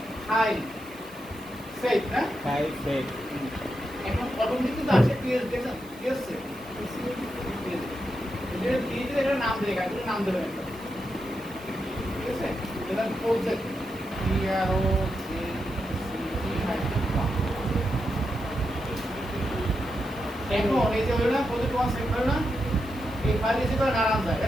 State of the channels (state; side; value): noise; right; hiss, 23 dB below the sound